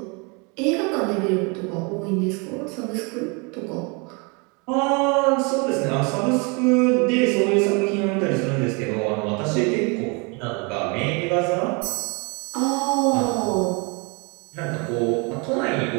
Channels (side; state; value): left; quieter; 31.4 dB